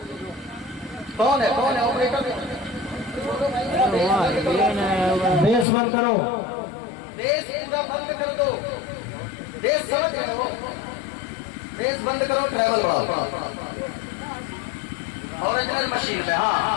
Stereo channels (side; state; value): right; drops out; at 5.7 s